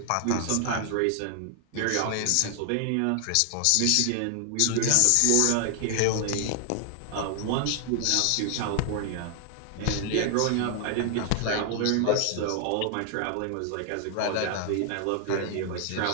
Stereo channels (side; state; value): both; different; correlation 0.00